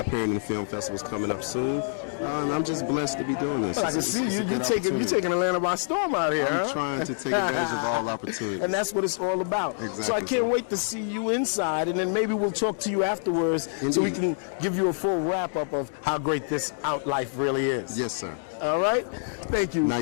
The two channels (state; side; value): silent; right; digital silence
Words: in the film festivals coming up soon. And I'm just blessed to be doing this. Well, I can see you're taking Atlanta by storm out here. I'm trying to take advantage of all opportunities. And that's what it's all about. Exactly. So I can't wait to see you inside, and then maybe we'll talk to you afterwards. Indeed. So we can give you a full wrap-up of how great this OutLife really is. Yes, sir. All right? Thank you.